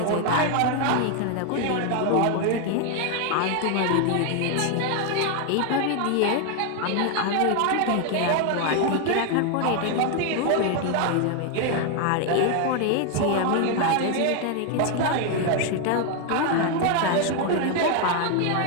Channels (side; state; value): both; different; correlation 0.01